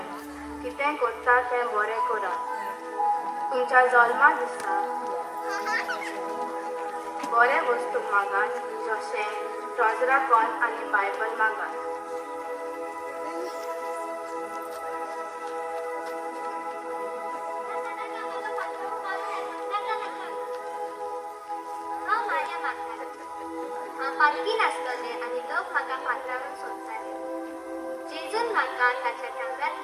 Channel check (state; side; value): identical; both; correlation 1.00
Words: कितें करता तें बरें करात. तुमच्या जल्मा दिसा बरे वस्तू मागात, जशें ट्रॉजरा कॉन आनी बायबल मागात. लागीं नासतले आनी लोक म्हाका पात्रावन सोदताले. जेजून म्हाका ताच्या